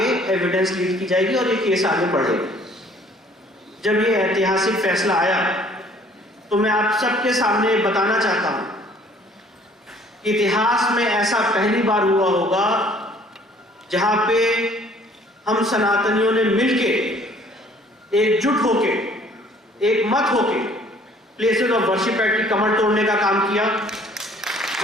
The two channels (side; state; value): both; normal; correlation 0.57